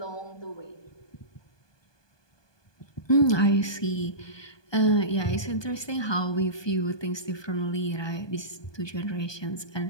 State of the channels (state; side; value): late; right; 1.2 ms